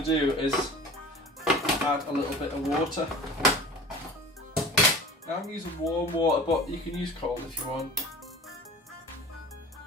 do is add a little bit of water. Now I'm using warm water, but you can use cold if you want.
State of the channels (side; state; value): both; normal; correlation 0.39